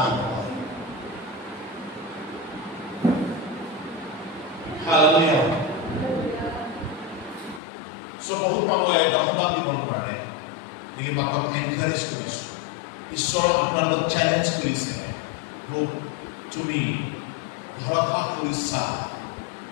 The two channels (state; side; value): drops out; right; at 7.6 s